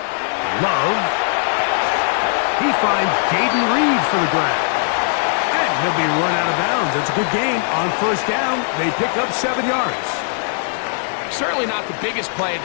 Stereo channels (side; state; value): right; silent; digital silence